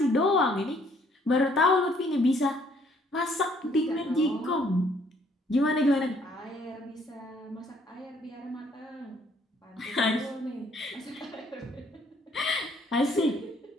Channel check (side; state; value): both; normal; correlation 0.64